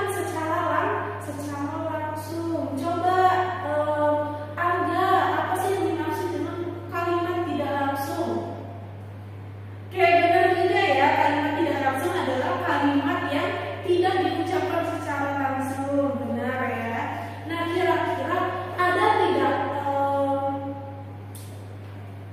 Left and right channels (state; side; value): identical; both; correlation 1.00